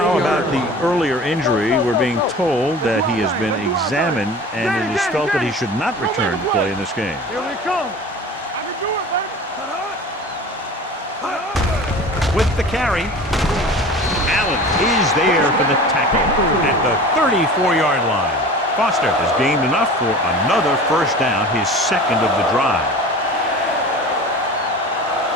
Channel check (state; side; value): normal; both; correlation 0.38